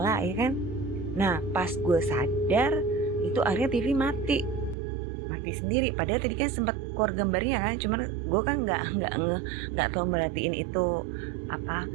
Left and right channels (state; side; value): drops out; left; at 4.8 s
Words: ya kan. Nah pas gue sadar itu akhirnya TV mati sendiri. Padahal tadi kan sempat keluar gambarnya kan, cuman gue kan nggak tahu merhatiin itu apa